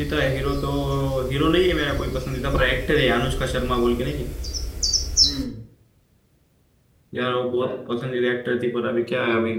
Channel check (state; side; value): identical; both; correlation 1.00